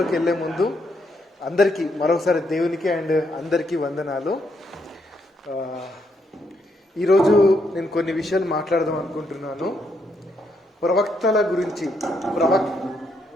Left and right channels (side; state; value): both; normal; correlation 0.76